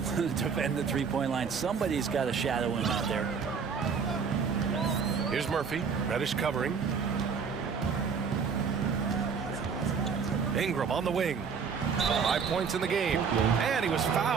to defend the three-point line. Somebody's got to shadow him out there. Here's Murphy. Reddish covering. Ingram on the wing. 5 points in the game. And he was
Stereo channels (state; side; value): quieter; left; 6.0 dB